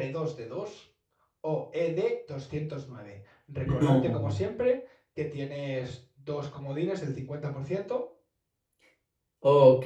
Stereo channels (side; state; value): both; identical; correlation 1.00